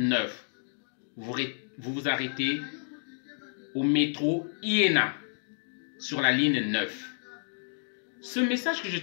Vous vous arrêtez au métro Iéna sur la ligne 9. Ce message que je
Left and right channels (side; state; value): right; silent; digital silence